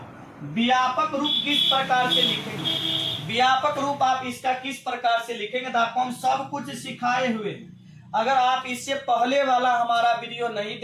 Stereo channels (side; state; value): both; identical; correlation 1.00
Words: व्यापक रूप किस प्रकार से लिखेंगे, व्यापक रूप आप इसका किस प्रकार से लिखेंगे, तो आपको हम सब कुछ सिखाए हुए हैं। अगर आप इससे पहले वाला हमारा वीडियो नहीं